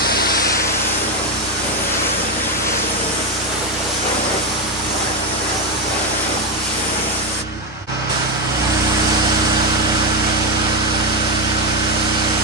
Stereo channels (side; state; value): both; normal; correlation 0.09